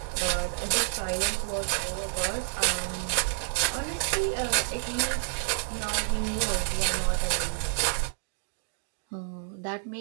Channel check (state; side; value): silent; left; digital silence